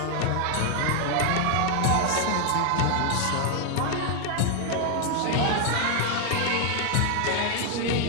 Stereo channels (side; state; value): both; different; correlation 0.00